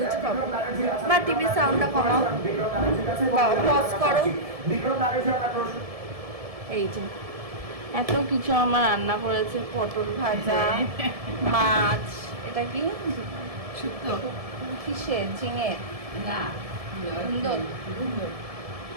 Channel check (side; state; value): left; late; 1.7 ms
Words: কিছু খাবো। বা টিভির সাউন্ডটা কমাও বা পজ করো। এই যে এত কিছু আমার রান্না করেছে, পটল ভাজা, মাছ, এটা কি শুক্তো কিসের, ঝিঙে না সুন্দর,